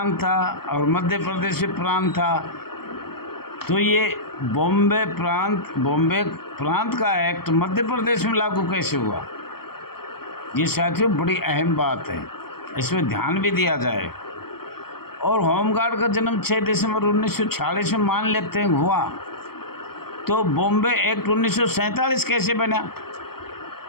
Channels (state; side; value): late; right; 0.95 ms